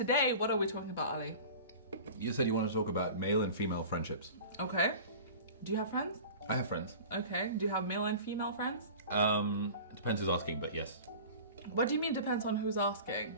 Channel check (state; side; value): inverted; both; correlation -0.38